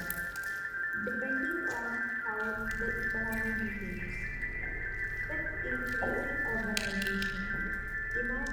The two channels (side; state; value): both; identical; correlation 1.00